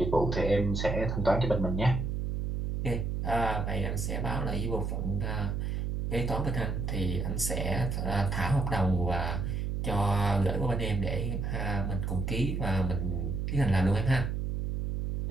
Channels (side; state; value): right; noise; hum, 1 dB below the sound